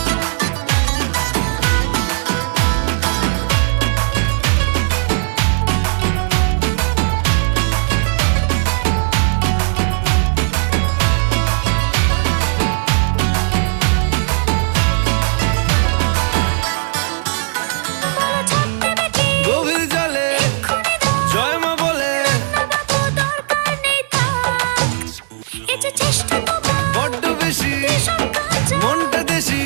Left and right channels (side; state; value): left; silent; 57 dB below the other